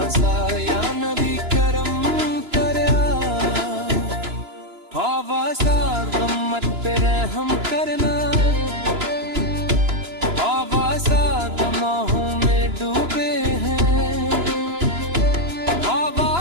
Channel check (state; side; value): late; left; 2.9 ms